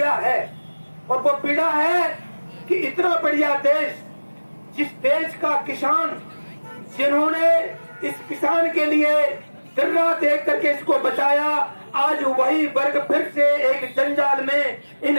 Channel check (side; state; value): both; inverted; correlation -1.00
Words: है और वो पीड़ा है कि इतना बढ़िया देश, जिस देश का किसान, जिन्होंने इस किसान के लिए दिन रात देख करके इसको बचाया, आज वही वर्ग फिर से एक जंजाल में